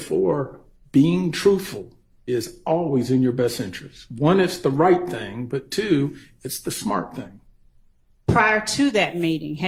being truthful is always in your best interest. One, it's the right thing, but two, it's the smart thing. Prior to that meeting,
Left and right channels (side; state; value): both; identical; correlation 1.00